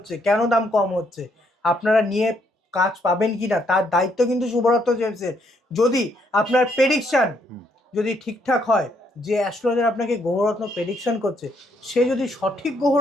কেন দাম কম হচ্ছে, আপনারা নিয়ে কাজ পাবেন কিনা তার দায়িত্ব কিন্তু শুভরত্ন জেমসের। যদি আপনার প্রেডিকশন যদি ঠিকঠাক হয়, যে অ্যাস্ট্রোলজার আপনাকে গ্রহরত্ন প্রেডিকশন করছে সে যদি সঠিক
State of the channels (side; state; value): both; normal; correlation 0.72